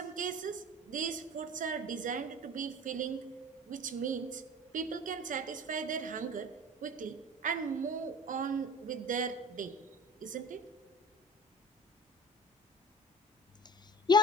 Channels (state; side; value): normal; both; correlation 0.39